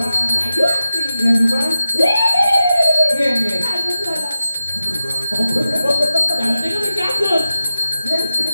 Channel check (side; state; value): both; inverted; correlation -0.93